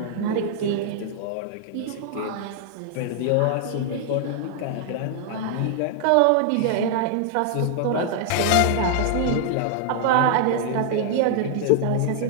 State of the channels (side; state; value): both; different; correlation 0.00